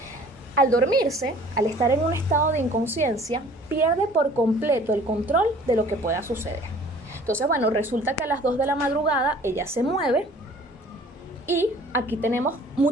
Al dormirse, al estar en un estado de inconsciencia, pierde por completo el control de lo que pueda suceder. Entonces, bueno, resulta que a las 2 de la madrugada ella se mueve y aquí tenemos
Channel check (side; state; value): both; normal; correlation 0.51